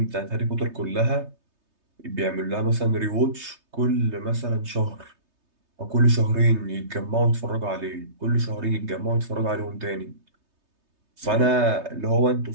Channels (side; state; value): left; late; 3.3 ms